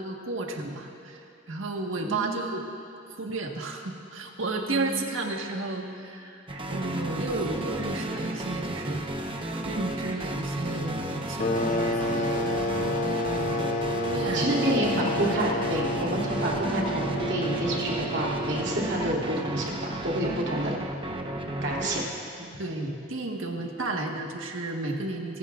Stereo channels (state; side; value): normal; both; correlation 0.36